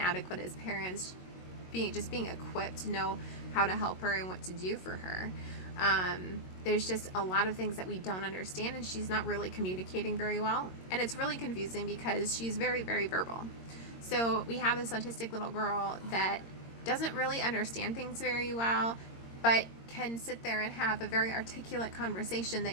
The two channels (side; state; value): right; late; 22 ms